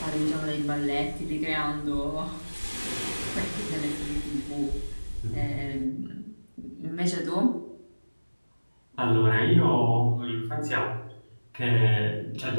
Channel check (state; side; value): inverted; both; correlation -1.00